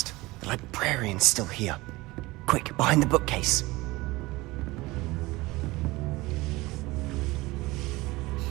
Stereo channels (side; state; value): left; quieter; 20.9 dB